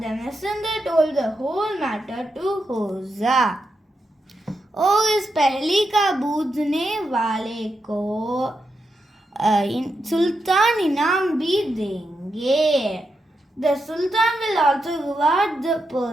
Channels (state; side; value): normal; both; correlation 0.85